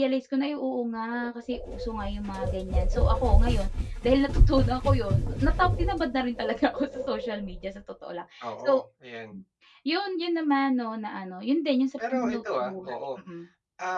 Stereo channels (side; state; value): both; identical; correlation 1.00